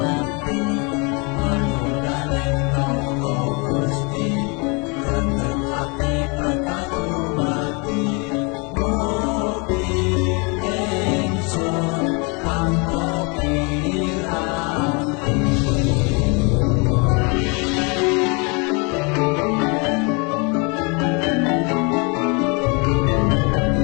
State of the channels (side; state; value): right; quieter; 31.7 dB